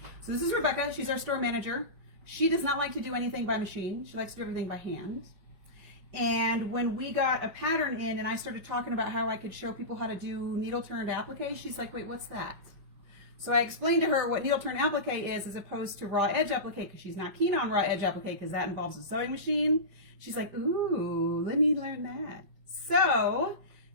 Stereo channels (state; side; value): late; left; 5.2 ms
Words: So this is Rebecca. She's our store manager. She does not like to do anything by machine. She likes to do everything by hand. And when we got a pattern in and I started talking about how I could show people how to do needle turned applique, she's like, wait, what's that? So I explained to her what needle turned applique is as opposed to raw edge applique, because she's not keen on raw edge applique because that involves a sewing machine. She's like, ooh, let me learn that. So